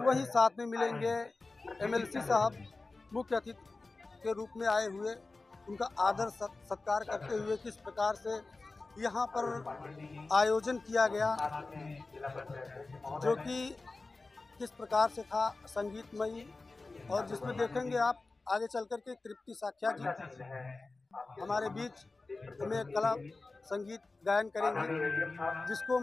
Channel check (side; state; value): right; quieter; 3.5 dB